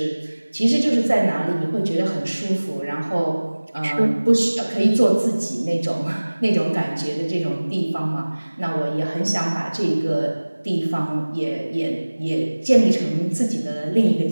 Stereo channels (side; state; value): both; inverted; correlation -1.00